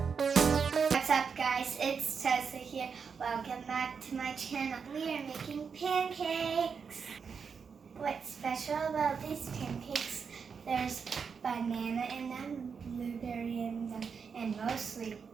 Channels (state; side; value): quieter; left; 6.0 dB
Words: up, guys? It's Tessa here. Welcome back to my channel. We are making pancakes. What's special about these pancakes? There's banana in them, blueberry in them, and mostly